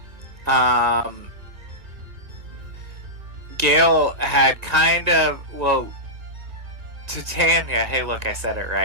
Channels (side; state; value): left; late; 1.8 ms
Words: Gail had kind of, well, Titania, hey look, I said it